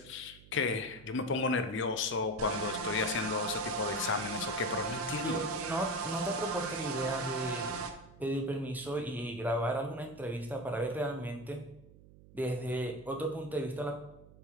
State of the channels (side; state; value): right; noise; hum, 21 dB below the sound